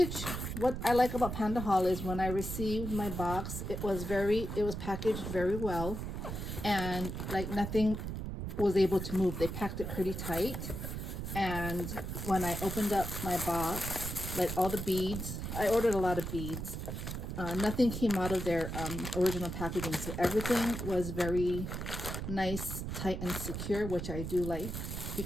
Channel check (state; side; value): noise; right; rumble, 5 dB below the sound